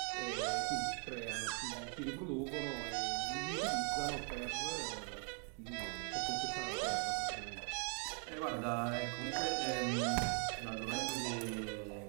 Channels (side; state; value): left; quieter; 37.1 dB